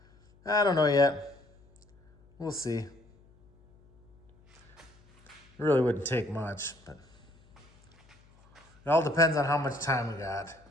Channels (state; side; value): noise; left; hum, 29 dB below the sound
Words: I don't know yet. We'll see. It really wouldn't take much, but it all depends on how much time we got.